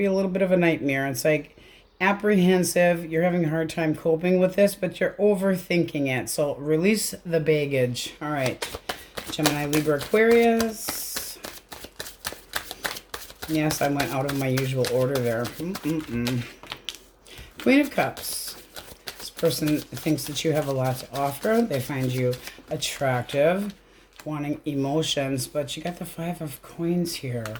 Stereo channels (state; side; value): identical; both; correlation 1.00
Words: a little bit of a nightmare. It's like apprehensive. You're having a hard time coping with this, but you're overthinking it. So release the baggage. All right. Gemini, Libra, Aquarius. Yes, I went out of my usual order there. Queen of Cups. This person thinks that you have a lot to offer. They find you attractive, wanting emotions, but you got the Five of Coins here.